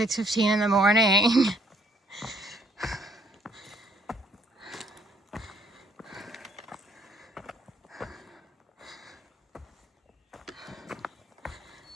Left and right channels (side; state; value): both; normal; correlation 0.64